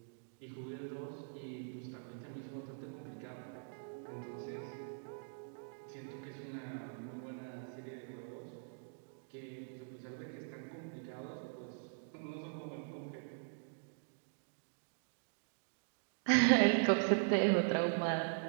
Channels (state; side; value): silent; left; digital silence